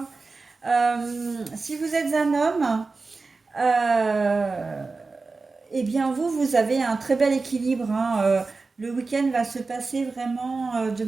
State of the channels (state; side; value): quieter; left; 4.0 dB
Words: Si vous êtes un homme, euh, eh bien, vous avez un très bel équilibre, hein. Le week-end va se passer vraiment de